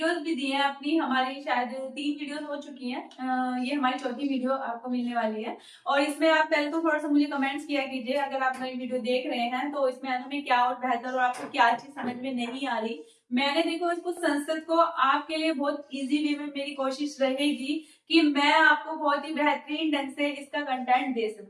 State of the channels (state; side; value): identical; both; correlation 1.00